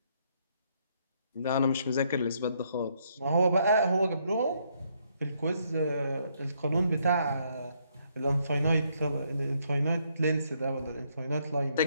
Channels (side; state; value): both; inverted; correlation -0.72